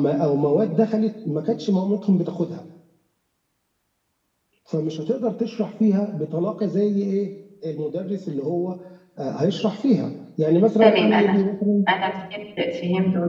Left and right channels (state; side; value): identical; both; correlation 1.00